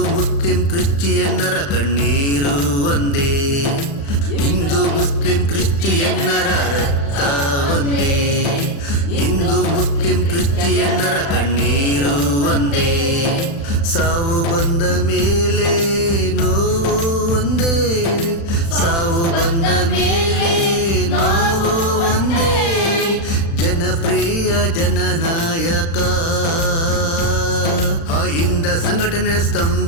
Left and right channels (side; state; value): right; late; 35 ms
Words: ಮುಸ್ಲಿಂ ಕ್ರಿಶ್ಚಿಯನ್ನರ ಕಣ್ಣೀರು ಒಂದೇ ಹಿಂದೂ ಮುಸ್ಲಿಂ ಕ್ರಿಶ್ಚಿಯನ್ನರ ರಕ್ತ ಒಂದೇ ಹಿಂದೂ ಮುಸ್ಲಿಂ ಕ್ರಿಶ್ಚಿಯನ್ನರ ಕಣ್ಣೀರು ಒಂದೇ ಸಾವು ಬಂದ ಮೇಲೆ ನೋವು ಒಂದೇ ಸಾವು ಸಂಘಟನೆ